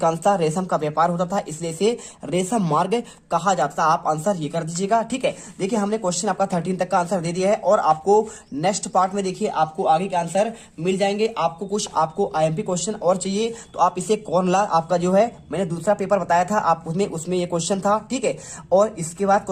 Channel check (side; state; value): both; identical; correlation 1.00